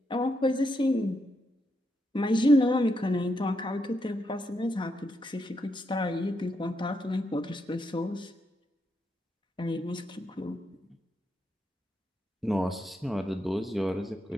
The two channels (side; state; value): both; normal; correlation 0.81